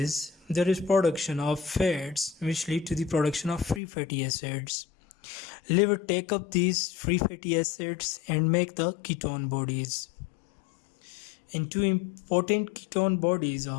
there is production of fats which lead to the production of free fatty acids. Liver take up these free fatty acids and make the ketone bodies. And two important ketone bodies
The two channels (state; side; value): drops out; right; at 3.8 s